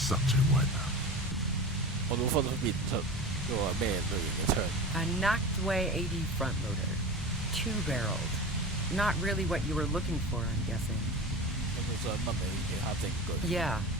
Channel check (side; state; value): both; normal; correlation 0.31